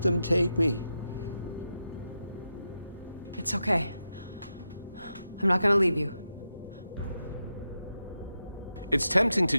them take me. It's okay. I'm not gonna leave you. It's tempting to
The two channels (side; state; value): both; inverted; correlation -0.88